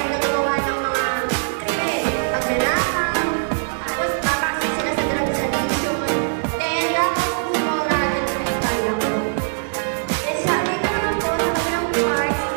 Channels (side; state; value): left; silent; digital silence